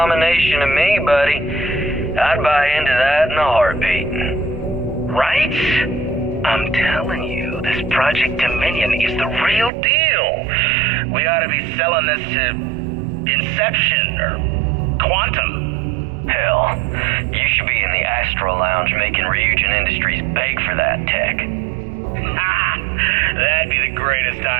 to me, buddy. I'd buy into that in a heartbeat. Right? I'm telling you, this Project Dominion is the real deal. We ought to be selling this to Inception or Quantum. Hell, you should be in the Astro Lounge making Ryujin Industries beg for that tech. Ha! That'd be the greatest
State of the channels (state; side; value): drops out; left; at 9.7 s